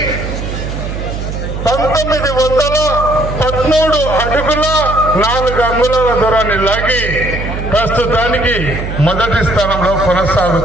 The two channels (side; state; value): right; noise; hum, 5 dB below the sound